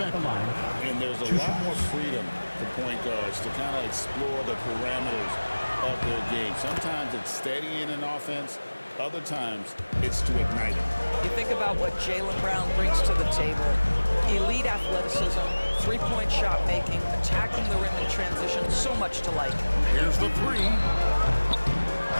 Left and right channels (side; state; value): both; inverted; correlation -1.00